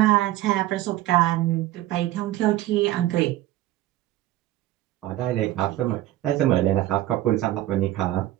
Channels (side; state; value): left; quieter; 15.2 dB